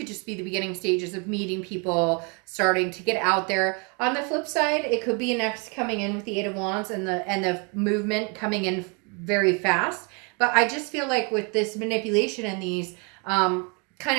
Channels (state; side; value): quieter; left; 33.5 dB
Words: just be the beginning stages of meeting people, starting to get out there. On the flip side, it could be an ex coming in with the Eight of Wands and the movement coming in very fast. But I just feel like with this manipulation and these kind